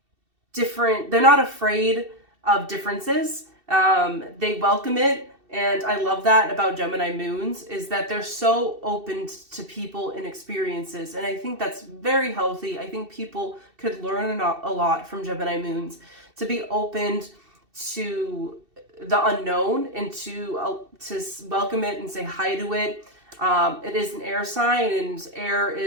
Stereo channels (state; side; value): late; left; 2.7 ms